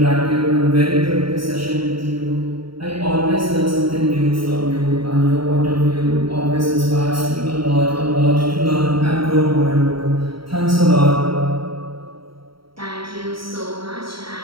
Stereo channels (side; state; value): left; late; 0.74 ms